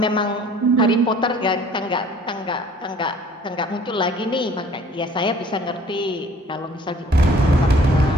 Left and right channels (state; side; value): normal; both; correlation 0.54